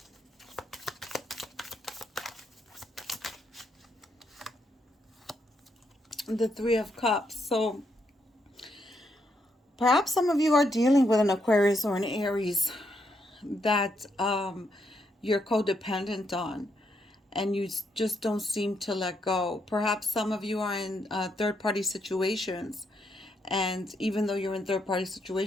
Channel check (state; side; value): normal; both; correlation 0.78